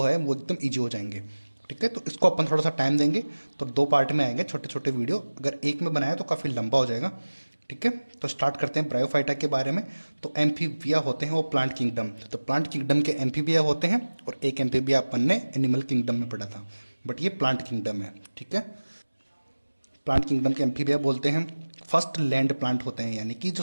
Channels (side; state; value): both; inverted; correlation -1.00